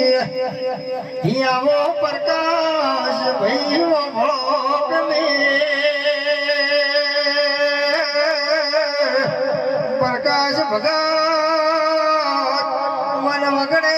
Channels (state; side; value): identical; both; correlation 1.00